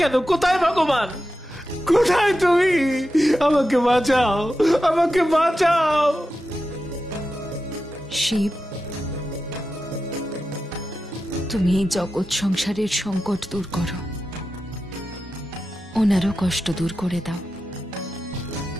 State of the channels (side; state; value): both; normal; correlation 0.91